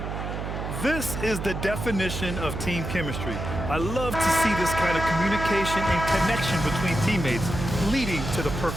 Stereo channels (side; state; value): right; noise; hum, 5 dB below the sound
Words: This is the definition of team chemistry. I love to see this kind of communication and connection between teammates leading to the